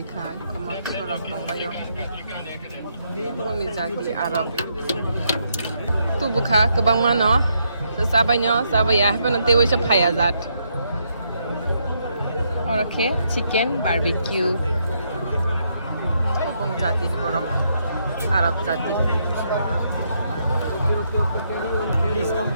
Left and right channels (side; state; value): both; inverted; correlation -0.76